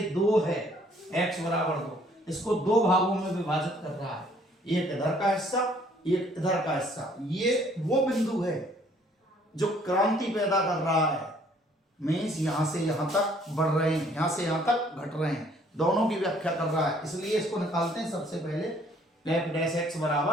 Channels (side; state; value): both; normal; correlation 0.61